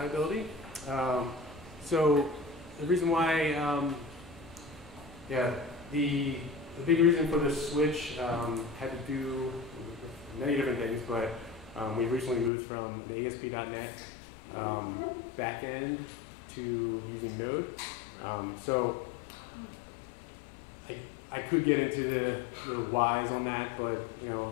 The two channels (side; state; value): right; drops out; at 12.5 s